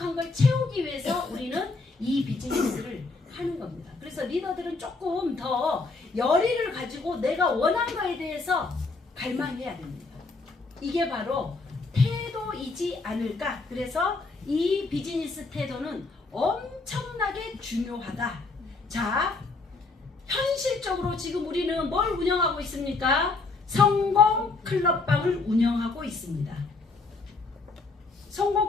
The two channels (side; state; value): right; quieter; 3.8 dB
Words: 걸 채우기 위해서 우리는 이 비즈니스를 하는 겁니다. 그래서 리더들은 조금 더 열의를 가지고 내가 원하는 거에 대해서 갈망해야 됩니다. 이게 바로 태도이지 않을까? 그래서 이 비즈니스 태도는 엄청나게 중요하다. 자, 현실적으로 지금 우리는 뭘 운영하고 있습니까? 성공 클럽방을 운영하고 있습니다. 성공